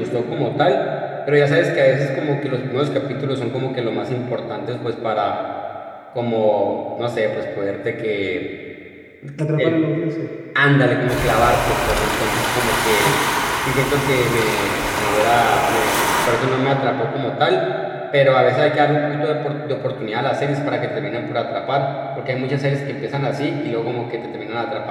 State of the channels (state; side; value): identical; both; correlation 1.00